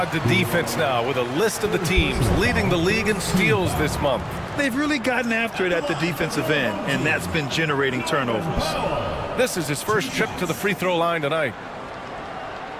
to defense now with a list of the teams leading the league in steals this month. They've really gotten after it at the defensive end, and that's been generating turnovers. This is his first trip to the free throw line tonight.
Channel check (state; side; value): identical; both; correlation 1.00